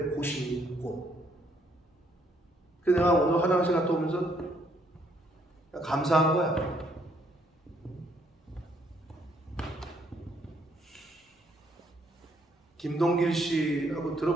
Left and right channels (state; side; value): normal; both; correlation 0.69